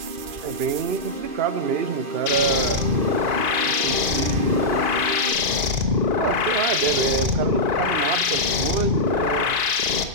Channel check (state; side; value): late; left; 2.5 ms